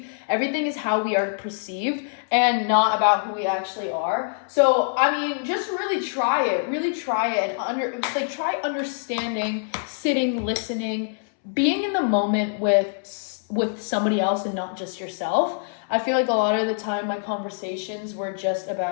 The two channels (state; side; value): silent; right; 62 dB below the other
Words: Everything is how we are perceived and not about who we actually are. So, I mean, just really try it. Really try it. And try understanding, sitting, listening, being in the moment with somebody else and not just yourself. I feel like a lot of the time my conversations were just